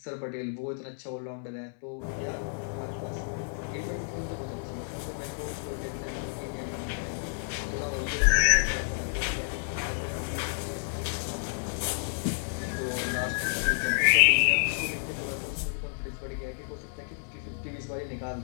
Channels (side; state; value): right; silent; digital silence